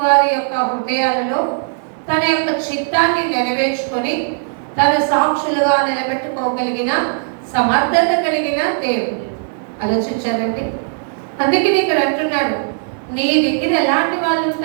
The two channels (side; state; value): left; silent; 59 dB below the other